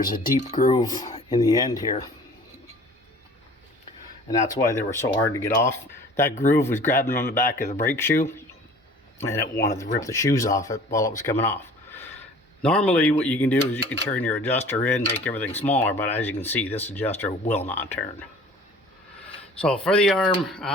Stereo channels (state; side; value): normal; both; correlation 0.47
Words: a deep groove in the end here, and that's why they were so hard to get off. That groove was grabbing on the back of the brake shoe, and it wanted to rip the shoes off it while it was coming off. Normally what you can do is you can turn your adjuster in, make everything smaller, but as you can see, this adjuster will not turn. So for the arm,